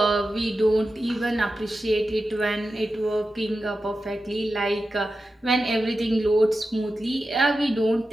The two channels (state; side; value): normal; both; correlation 0.92